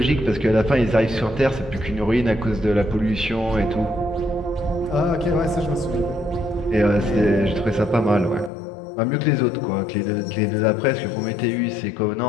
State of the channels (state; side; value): drops out; right; at 8.5 s